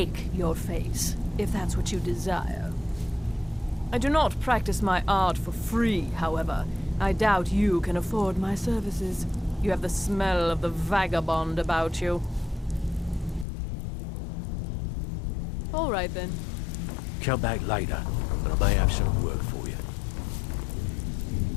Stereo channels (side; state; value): right; drops out; at 13.5 s